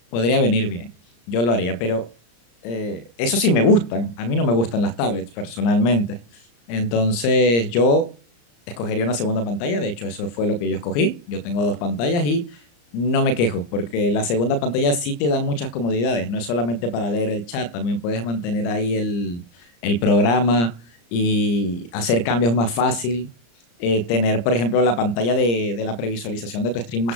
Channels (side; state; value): right; late; 34 ms